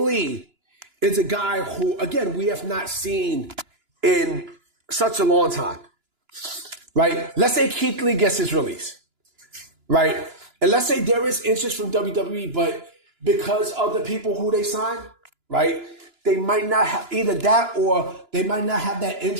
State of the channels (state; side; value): late; left; 2.9 ms